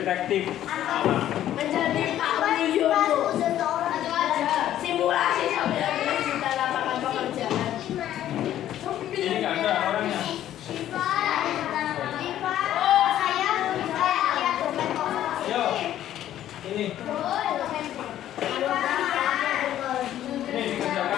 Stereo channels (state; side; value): quieter; right; 12.0 dB